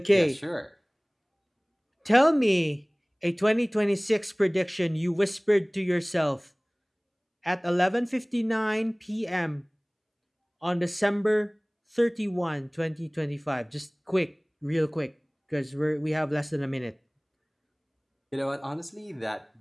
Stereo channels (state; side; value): identical; both; correlation 1.00